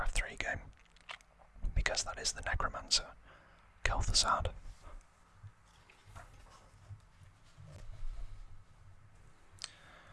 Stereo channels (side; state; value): both; identical; correlation 1.00